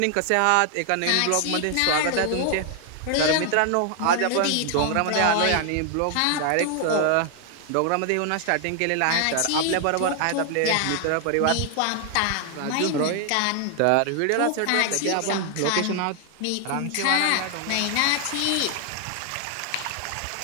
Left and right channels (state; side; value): different; both; correlation 0.00